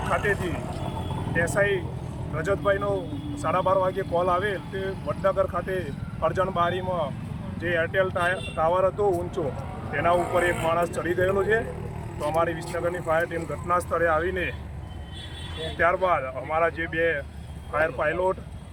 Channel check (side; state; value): both; identical; correlation 1.00